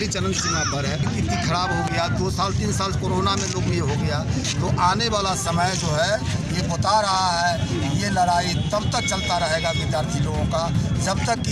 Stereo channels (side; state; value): both; identical; correlation 1.00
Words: चरम सीमा पर है, स्थिति खराब हो गया। 2 साल 3 साल कोरोना में लोग ये हो गया। तो आने वाला समय जो है ये बता रहा है ये लड़ाई तब तक चलता रहेगा विद्यार्थी लोगों का जब तक कि